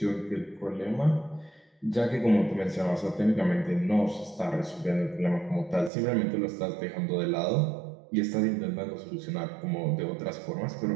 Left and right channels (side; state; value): left; drops out; at 5.9 s